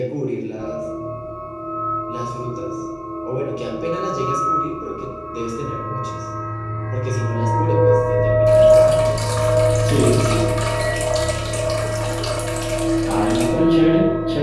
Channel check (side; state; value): both; identical; correlation 1.00